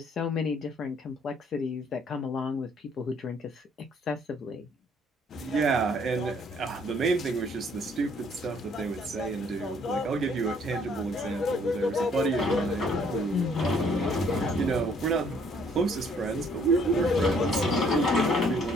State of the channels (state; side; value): normal; both; correlation 0.63